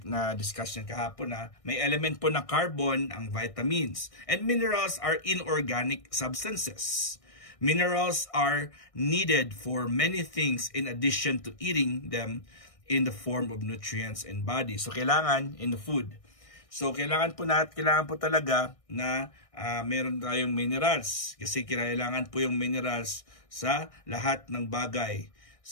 na-discuss yan kahapon na may element po na carbon ang vitamins. And minerals are inorganic substances. Minerals are needed for many things in addition to eating them in the form of nutrients in body. So, kailangan in the food. So, kailangan po talaga na meron tayong minerals. Kasi kailangan po yung minerals sa lahat ng bagay.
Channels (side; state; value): right; late; 1.6 ms